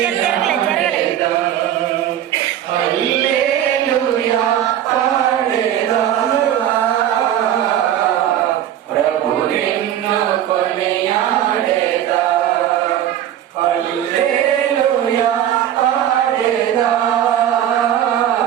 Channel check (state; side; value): quieter; left; 11.2 dB